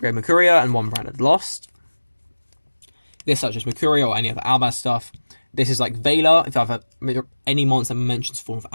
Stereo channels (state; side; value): inverted; both; correlation -1.00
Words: Mercuria and 1 branded Lost. This such as Mercuria or any other Albaz stuff. This is like Veiler, if I have any monster that mentions form of